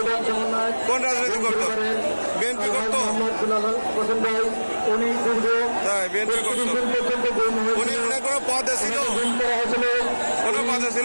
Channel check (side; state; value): both; inverted; correlation -1.00